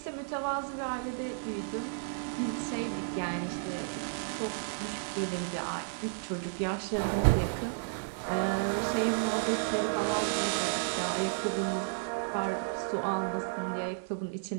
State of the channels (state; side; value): silent; left; digital silence